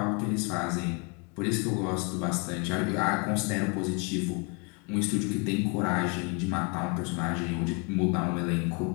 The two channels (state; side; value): quieter; right; 33.4 dB